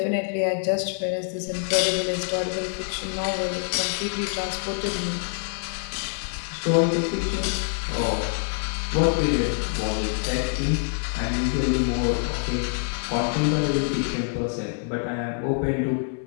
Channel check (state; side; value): silent; right; 61 dB below the other